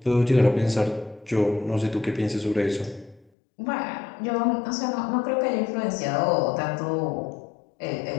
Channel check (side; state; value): right; drops out; at 3.2 s